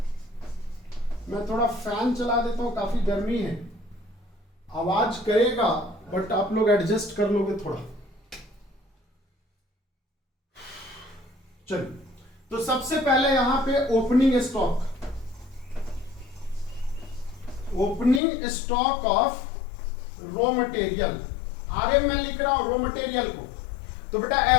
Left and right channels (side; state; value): right; drops out; at 18.2 s